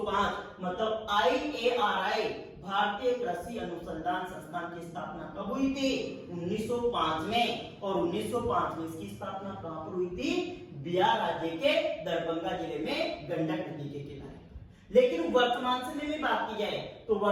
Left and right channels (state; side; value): identical; both; correlation 1.00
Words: मतलब IARI भारतीय कृषि अनुसंधान संस्थान की स्थापना कब हुई थी? 1905 में। और 1905 में इसकी स्थापना कहां पर हुई थी? बिहार राज्य के दरभंगा जिले में गंडक नदी के किनारे। लेकिन वर्तमान समय में बात की जाए तो